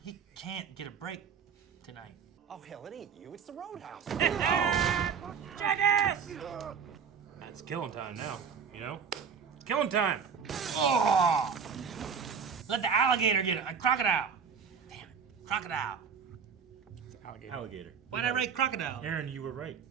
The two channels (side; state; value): left; quieter; 6.6 dB